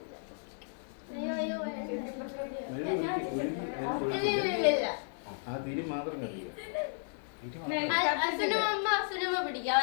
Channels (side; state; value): right; silent; digital silence